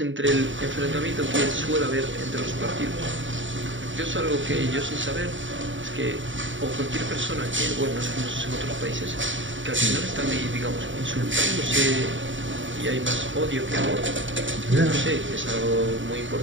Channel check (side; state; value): left; late; 0.55 ms